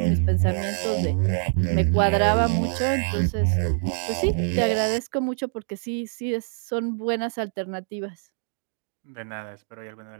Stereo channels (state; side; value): silent; left; 62 dB below the other